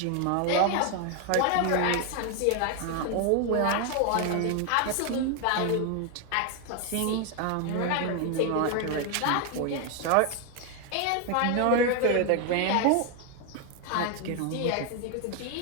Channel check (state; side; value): different; both; correlation 0.01